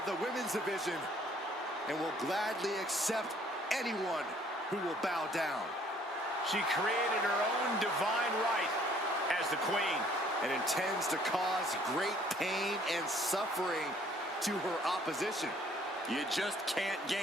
the women's division and will gladly accept anyone who will bow down. She created her own divine right as the Queen and intends to cause great pain and suffering to her opposition. You just can't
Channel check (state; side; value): normal; both; correlation 0.60